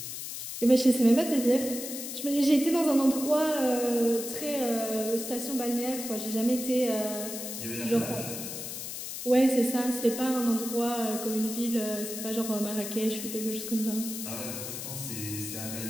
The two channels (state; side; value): noise; left; hiss, 7 dB below the sound